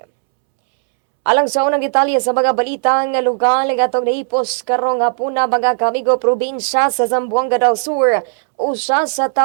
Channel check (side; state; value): left; silent; 69 dB below the other